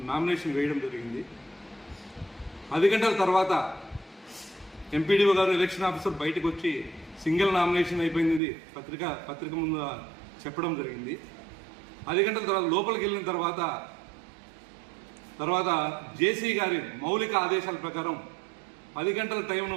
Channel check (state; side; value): drops out; left; at 8.4 s